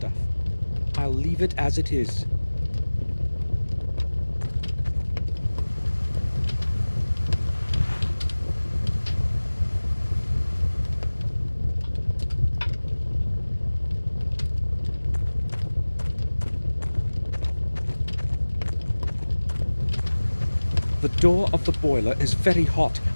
I'll leave it as it is. The door of the boiler is very hot.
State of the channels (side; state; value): both; inverted; correlation -1.00